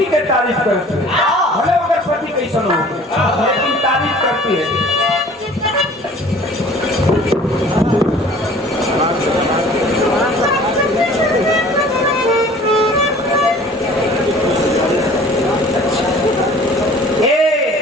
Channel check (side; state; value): both; normal; correlation 0.48